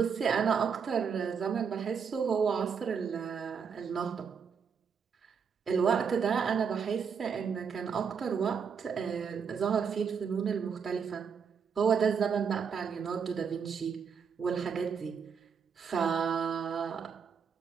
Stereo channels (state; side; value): quieter; left; 6.5 dB